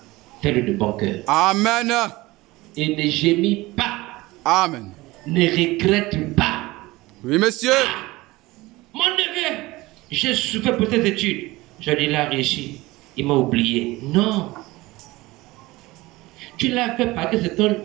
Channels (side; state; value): left; quieter; 20.2 dB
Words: fais-le de bon cœur. Amen. Et ne gémis pas, Amen. ne regrette pas. Oui, monsieur. Mon neveu, j'ai souffert pour tes études. Je l'ai réussi. Il m'a oublié. Non. Tu l'as fait parce que